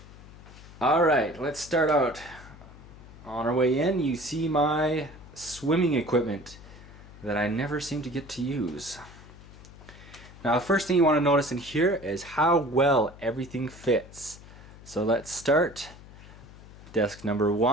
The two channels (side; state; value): left; noise; hum, 18 dB below the sound